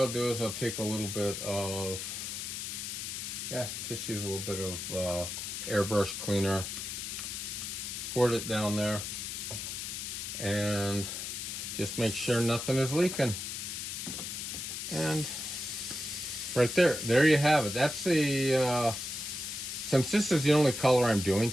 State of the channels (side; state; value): left; noise; hiss, 5 dB below the sound